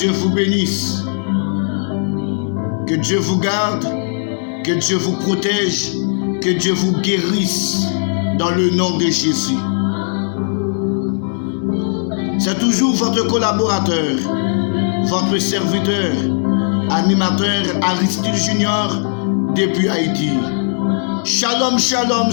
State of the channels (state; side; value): silent; right; digital silence